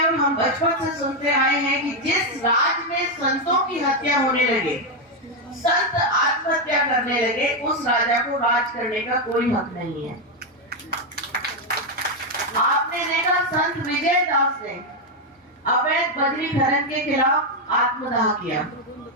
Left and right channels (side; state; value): both; normal; correlation 0.04